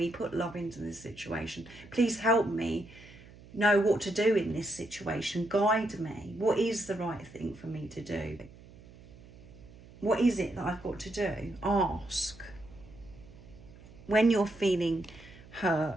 put love into this situation. Please help me know what to do in this situation. Guide me. What is the right thing for me to do? What is it that I've got to do? Ask. When you're feeling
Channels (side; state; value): right; noise; hum, 21 dB below the sound